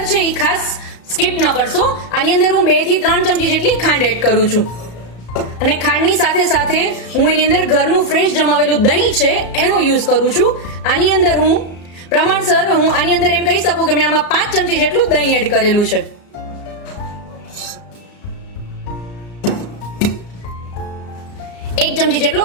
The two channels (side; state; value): right; late; 34 ms